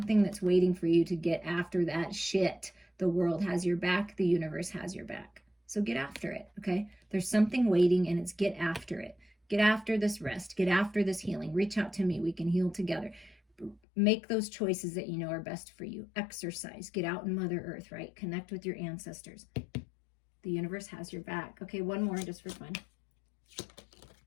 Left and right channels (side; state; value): right; drops out; at 13.8 s